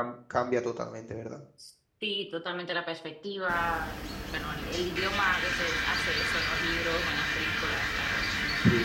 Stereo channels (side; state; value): both; identical; correlation 1.00